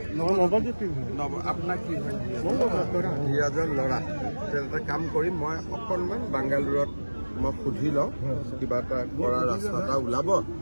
ধীৰাজৰ ল'ৰা। এটা কাম কৰিম, মই অকণমান বাংগালোৰত মই সুধি লওঁ, কিবা এটা কৰা ৰাস্তা এটা ওলাব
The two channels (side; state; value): both; inverted; correlation -1.00